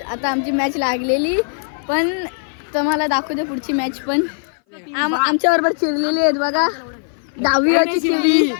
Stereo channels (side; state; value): right; silent; 60 dB below the other